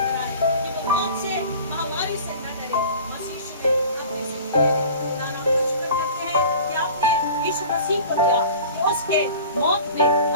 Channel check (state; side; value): inverted; both; correlation -0.43